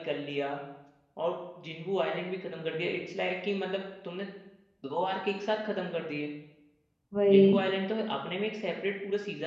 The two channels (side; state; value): both; identical; correlation 1.00